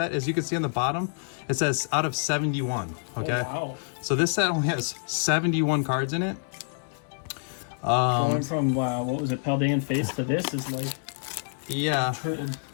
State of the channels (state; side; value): silent; right; 60 dB below the other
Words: As you can see on the bottom, it says out of 71. Okay. Oh, wow. So this set only has 71 cards in it. Going from what was it, Paldean Face to this is like Yeah.